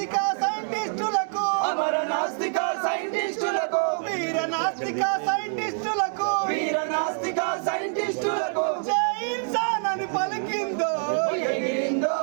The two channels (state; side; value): silent; left; 61 dB below the other